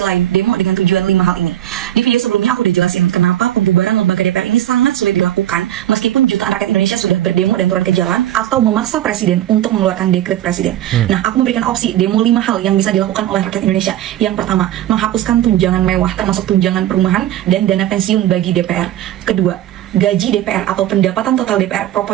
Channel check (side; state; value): left; quieter; 12.6 dB